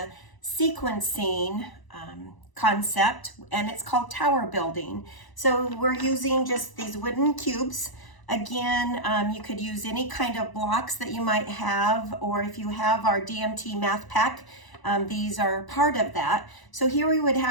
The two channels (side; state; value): right; late; 1.0 ms